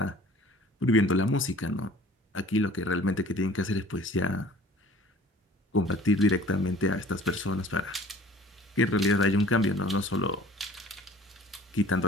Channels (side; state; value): both; normal; correlation 0.49